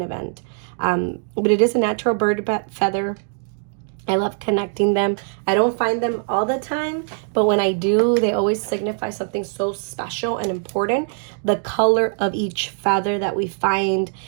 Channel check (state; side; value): silent; left; 61 dB below the other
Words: event. But it is a natural bird feather. I love connecting them. I don't find them all the time, but when I do, they always signify something so special and important. The color of each feather that we find